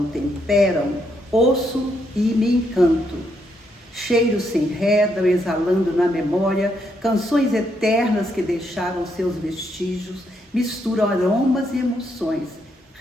temperam, ouço e me encanto. Cheiros se enredam, exalando na memória canções eternas que deixaram seus vestígios, misturam aromas e emoções,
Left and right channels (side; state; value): both; normal; correlation 0.76